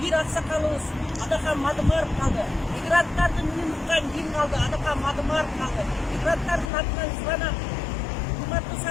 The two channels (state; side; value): drops out; right; at 6.7 s